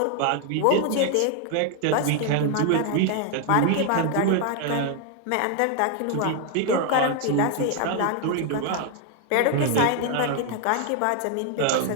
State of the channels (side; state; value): both; different; correlation 0.00